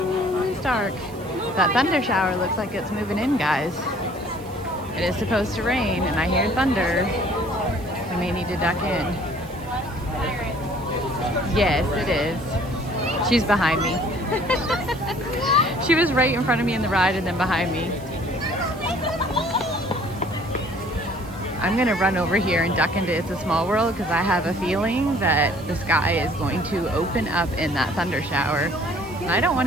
it's dark. That thunder shower looks like it's moving in, guys. It is supposed to rain, and I hear thunder. We may need to duck in. Yes, it is. She's behind me. She was right in front of me in the ride and then behind me. I'm gonna run over here and duck into It's a Small World because I have a feeling that the sky is going to open up in that thunder shower. And I don't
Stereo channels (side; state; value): right; noise; hiss, 23 dB below the sound